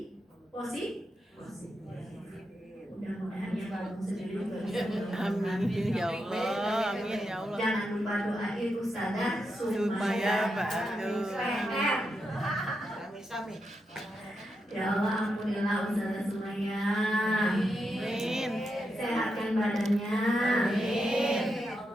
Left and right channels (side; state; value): both; normal; correlation 0.85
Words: positif. Mudah-mudahan yang kamu sendiri juga bisa. Amin ya Allah, amin ya Allah. Jangan lupa doain Ustazah Supaya ba'du. PR. Sami-sami. Ya Allah, ampunilah Ustazah Sumaya. Amin. Sehatkan badannya. Amin.